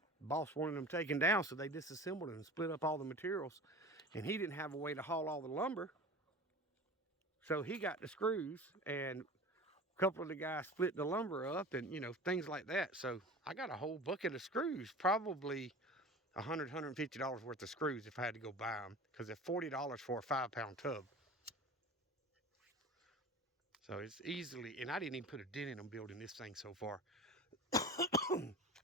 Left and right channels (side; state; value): both; normal; correlation 0.36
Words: boss wanted them taken down, so they disassembled and split up all the materials. And he didn't have a way to haul all the lumber. So he got the screws, and a couple of the guys split the lumber up and, you know, things like that. So I got a whole bucket of screws, probably $100, $150 worth of screws if I had to go buy them, because they're $40 for a 5-pound tub. So it's easily, and I didn't even put a dent in them building this thing so far.